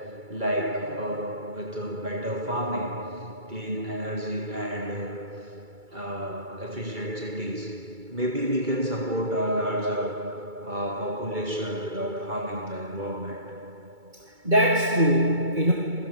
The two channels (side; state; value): left; late; 2.3 ms